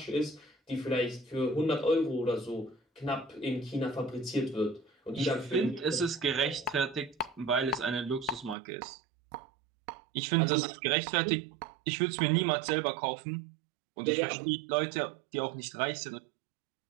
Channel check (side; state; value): left; drops out; at 8.6 s